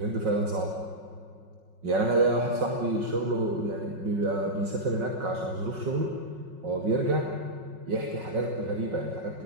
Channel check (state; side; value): late; left; 5.4 ms